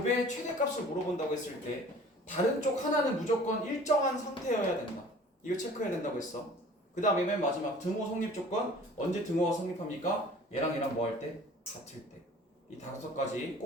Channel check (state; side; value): normal; both; correlation 0.48